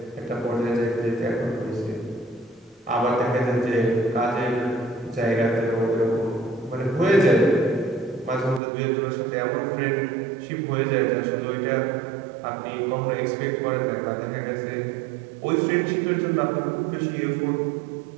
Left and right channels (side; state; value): left; drops out; at 8.6 s